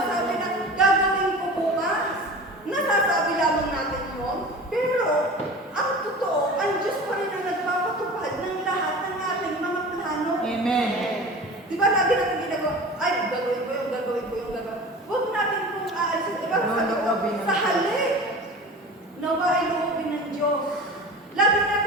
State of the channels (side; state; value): both; normal; correlation 0.36